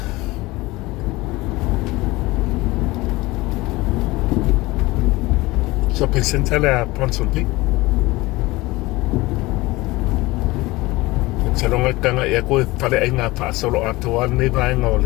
shopping center la Bronson P salonga kanga ya ko tale enga pa solo atuan ni ba nga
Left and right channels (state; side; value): quieter; right; 20.7 dB